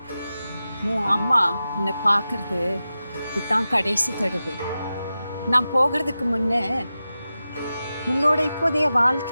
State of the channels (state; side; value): inverted; both; correlation -0.93